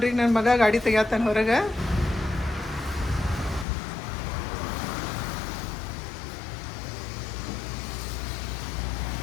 ನನ್ನ ಮಗ ಗಾಡಿ ತೆಗಿತಾನೆ ಹೊರಗೆ.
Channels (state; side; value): drops out; right; at 3.7 s